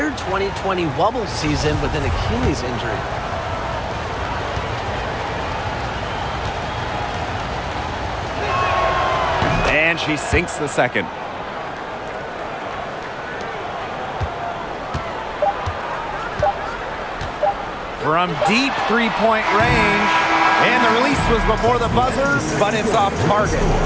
2020 Wubble season with an Achilles injury. And she sinks the second. From deep three-point range. And the release was before the buzzer, but it's off target.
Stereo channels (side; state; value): both; identical; correlation 1.00